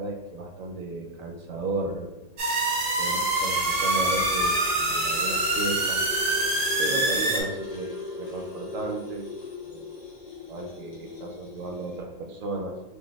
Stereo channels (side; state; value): right; late; 1.8 ms